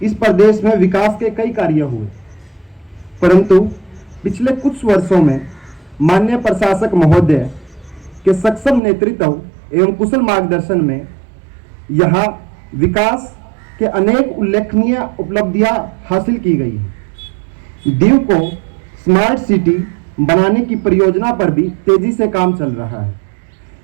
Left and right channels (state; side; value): drops out; left; at 8.8 s